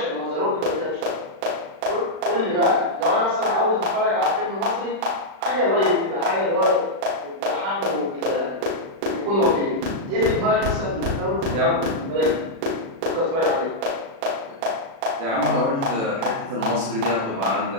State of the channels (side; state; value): left; late; 36 ms